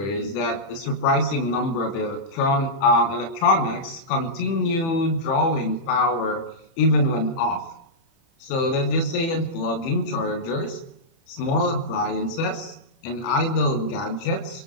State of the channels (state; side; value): late; right; 30 ms